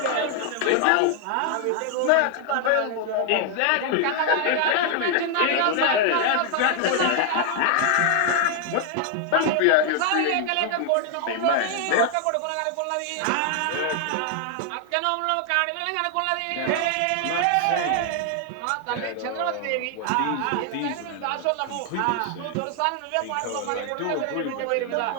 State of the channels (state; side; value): different; both; correlation 0.00